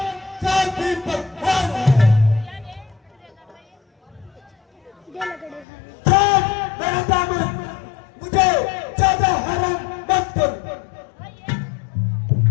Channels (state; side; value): drops out; right; at 5.7 s